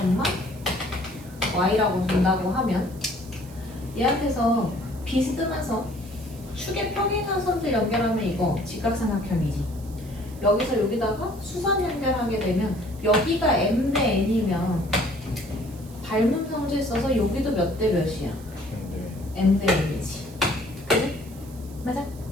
y라고 준다고 하면 얘한테서 비스듬해서 축의 평행한 선들 연결하면 이거 직각삼각형이지. 여기서 여기다가 수선 연결하게 되면 여기가 m 대 n이면 닮은 성질 써서 여기도 몇 대 몇이야? m 대 n이지. 그래? 맞아?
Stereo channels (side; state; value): right; noise; hiss, 22 dB below the sound